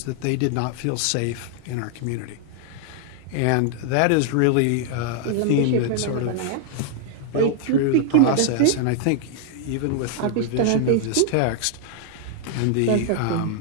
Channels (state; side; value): different; both; correlation 0.00